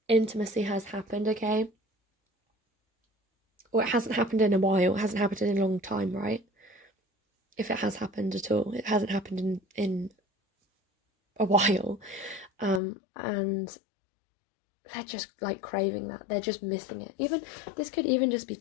intimacy has happened, okay? Or it hasn't happened in a while. It hasn't happened in a long time, right? If it has happened at all. It hasn't happened in a while. And they're just like craving that. They're just missing it. Even this could even just be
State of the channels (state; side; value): drops out; right; at 12.8 s